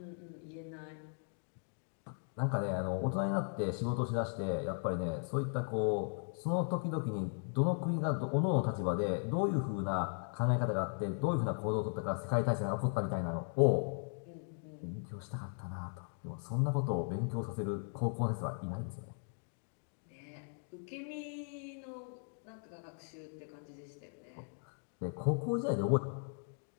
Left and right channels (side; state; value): right; silent; 53 dB below the other